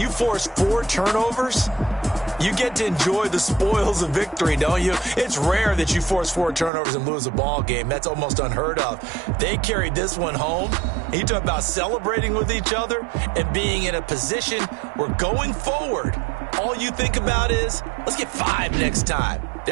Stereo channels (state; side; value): drops out; left; at 6.7 s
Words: you force 4 turnovers, you get to enjoy the spoils of victory, don't you? It's rare that you force 4 turnovers and lose a ball game. That's almost unheard of. They carried this one home. You talk about celebrating with each other and being in a position where going forward, all you think about is, let's get 5 next time.